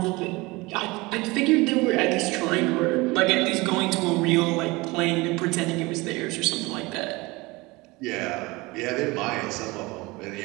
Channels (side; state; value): left; quieter; 23.0 dB